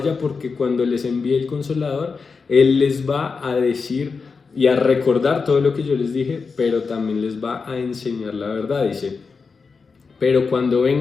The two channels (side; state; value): right; quieter; 4.9 dB